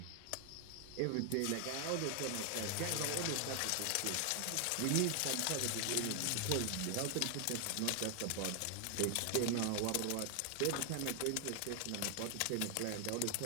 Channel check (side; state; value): both; different; correlation 0.00